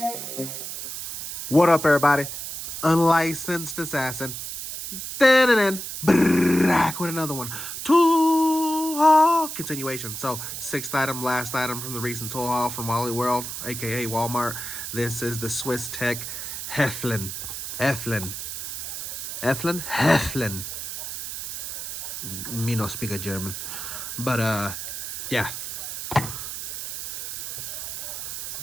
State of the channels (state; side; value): noise; right; hiss, 6 dB below the sound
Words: What up, everybody? Unlicensed assassin. Back with another one. Tool haul continuation. So, sixth item, last item from the recent tool haul from Wally World, aka Walmart. This is the Swiss Tech Helfen. Me no speak a German, but yeah,